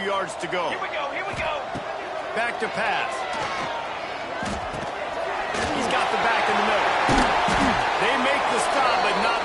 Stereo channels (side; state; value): both; identical; correlation 1.00